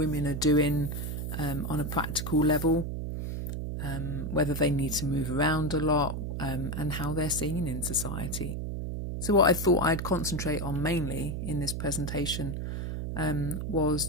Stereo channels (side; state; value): right; noise; hum, 4 dB below the sound